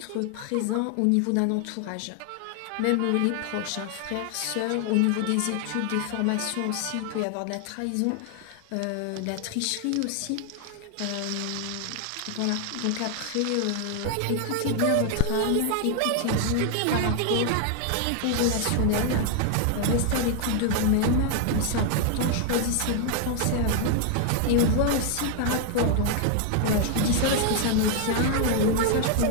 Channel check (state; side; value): different; both; correlation 0.00